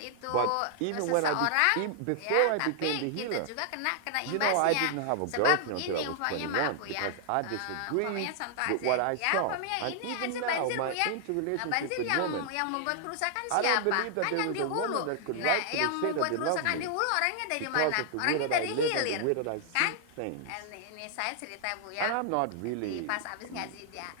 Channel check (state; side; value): different; both; correlation 0.00